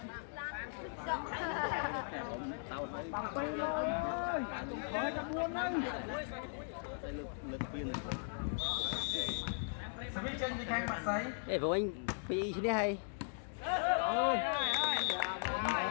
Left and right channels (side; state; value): right; silent; digital silence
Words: Tặng pin ơi, khỏi trong buôn đây. Semi chân đi kan masai. Ê vụ anh bị thế hay.